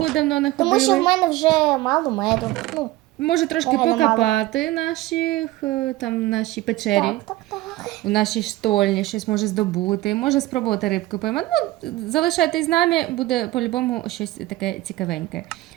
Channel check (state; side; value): quieter; left; 17.5 dB